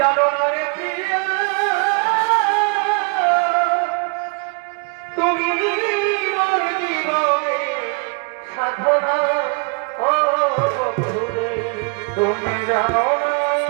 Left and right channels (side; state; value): left; quieter; 33.0 dB